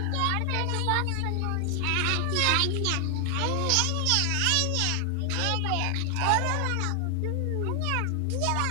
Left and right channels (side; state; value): both; different; correlation 0.00